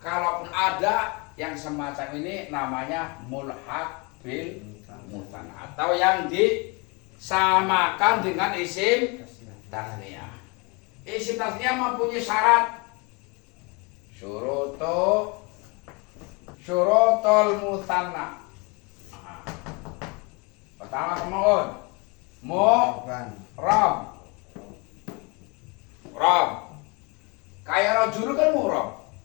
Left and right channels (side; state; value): right; quieter; 29.5 dB